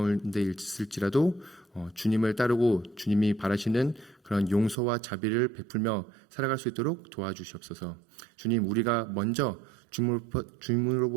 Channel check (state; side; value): drops out; left; at 4.8 s